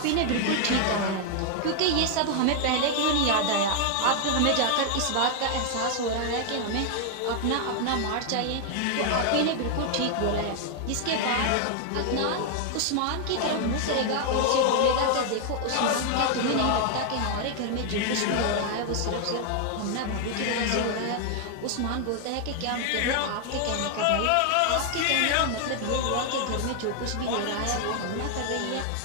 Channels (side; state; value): both; different; correlation 0.00